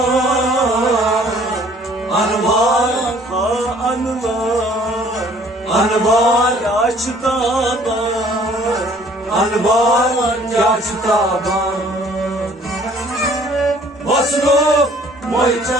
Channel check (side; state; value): both; normal; correlation 0.56